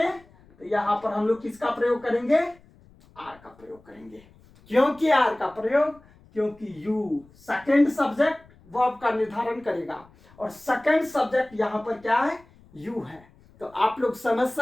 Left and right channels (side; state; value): left; noise; rumble, 27 dB below the sound